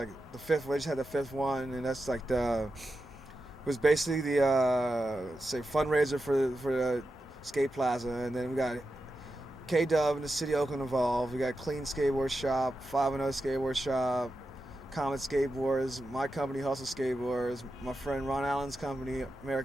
the fifth. We just had the fifth one, and that's like it was basically the say fundraiser for the skate plaza. And then we got K Dub and the city of Oakland involved. We got Clean Skateboard Shop, 5 Skateboard Shop, Comet Skateboards, my company Hustle Skateboards, my friend Ron Allen's company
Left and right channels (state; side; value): normal; both; correlation 0.90